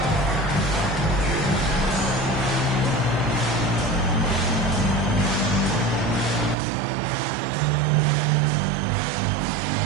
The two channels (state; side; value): drops out; left; at 6.6 s